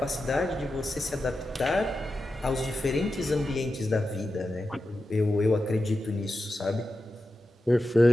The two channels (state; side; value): normal; both; correlation 0.91